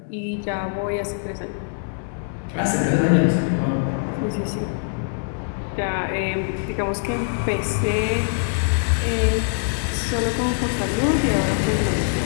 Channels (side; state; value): right; silent; digital silence